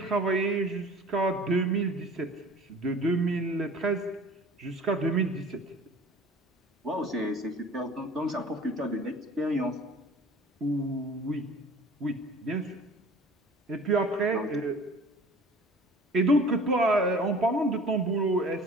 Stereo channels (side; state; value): both; normal; correlation 0.46